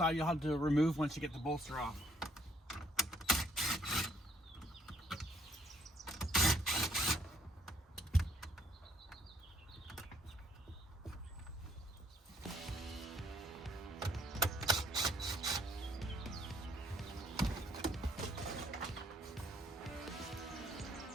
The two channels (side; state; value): both; normal; correlation 0.66